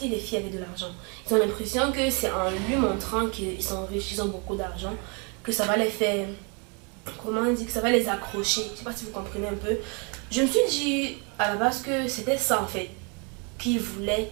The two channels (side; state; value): left; quieter; 33.9 dB